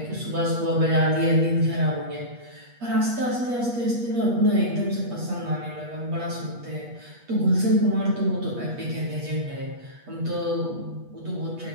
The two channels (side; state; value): left; late; 8.4 ms